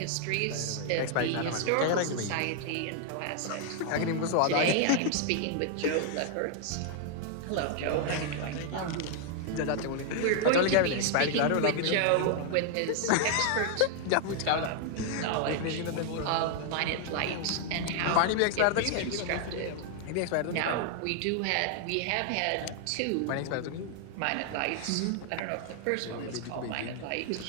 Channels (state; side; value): different; both; correlation 0.00